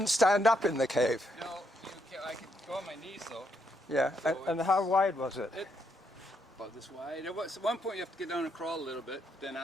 stand up in the cave. No, I could go on my knees though. Yeah, and how wide was it? About this wide. At one point you have to get down and crawl a little bit. Then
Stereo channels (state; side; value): normal; both; correlation 0.76